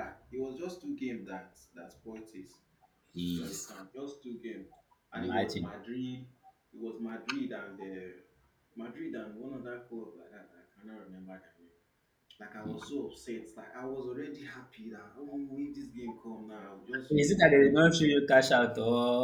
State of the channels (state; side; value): identical; both; correlation 1.00